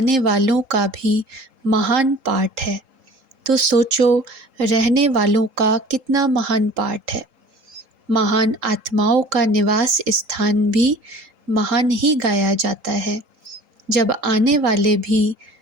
वालों का भी महान पाठ है, तो सोचो रहने वालों का कितना महान पाठ है। महान आत्माओं का निवास स्थान भी महान ही गाया जाता है। जब आने वाले भी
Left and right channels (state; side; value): late; left; 3.8 ms